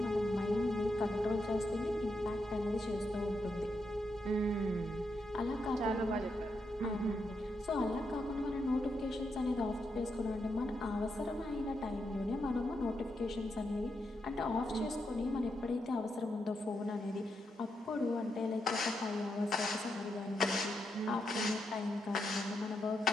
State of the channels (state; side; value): normal; both; correlation 0.83